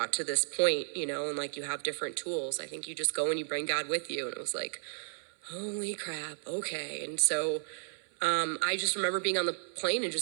to this point, and like you have different tools. I think you just go and you bring God with you. And it was like, holy crap, okay. And so I just remember being on the plane and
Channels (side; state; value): left; silent; 56 dB below the other